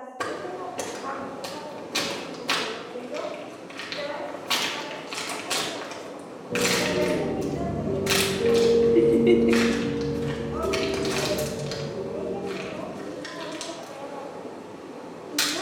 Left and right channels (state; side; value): identical; both; correlation 1.00